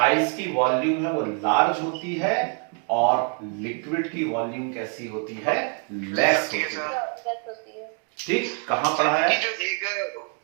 की वॉल्यूम है वो लार्ज होती है और लिक्विड की वॉल्यूम कैसी होती है? लेस होती है। ठीक, कहां पढ़ाया है? जो एक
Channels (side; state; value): left; quieter; 38.8 dB